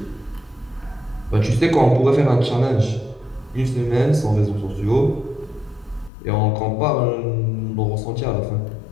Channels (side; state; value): right; drops out; at 6.1 s